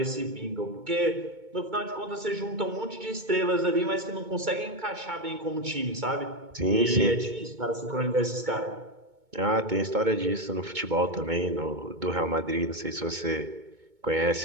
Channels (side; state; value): left; late; 2.2 ms